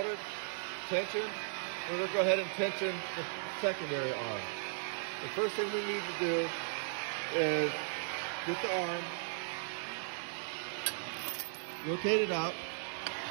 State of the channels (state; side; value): silent; left; 53 dB below the other